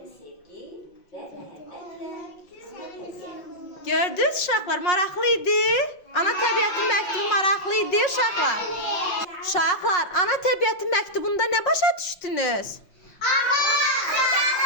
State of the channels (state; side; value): late; right; 5.6 ms